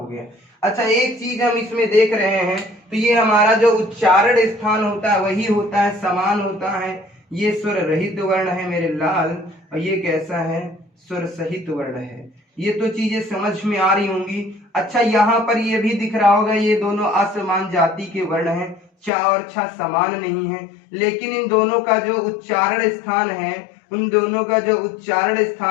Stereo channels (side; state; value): right; drops out; at 19.1 s